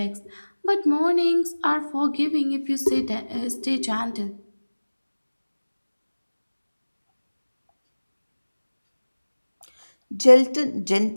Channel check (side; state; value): both; inverted; correlation -1.00